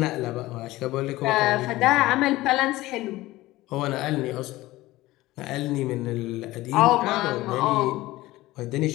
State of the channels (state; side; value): quieter; right; 18.0 dB